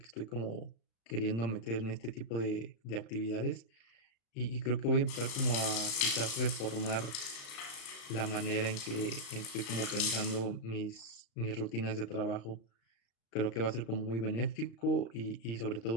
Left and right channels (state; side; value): late; right; 35 ms